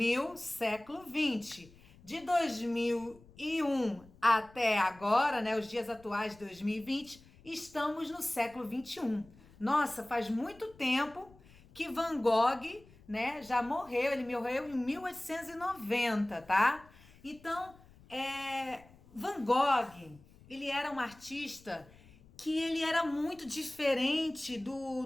século 20. De 2001 até agora, né, os dias atuais de 2020, estamos no século 21. Nossa, faz muito tempo que Van Gogh, né, já morreu. Ele morreu em 1890, tá? Então, Van Gogh, ele era um artista que ele era muito diferente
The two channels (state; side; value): noise; left; rumble, 25 dB below the sound